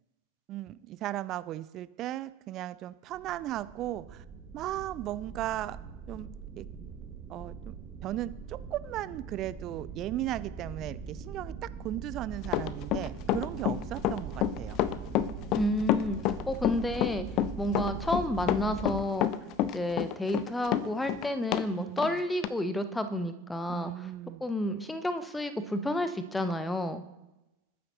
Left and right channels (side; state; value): both; normal; correlation 0.48